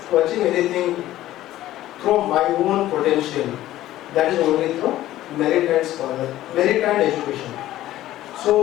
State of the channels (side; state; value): right; quieter; 14.4 dB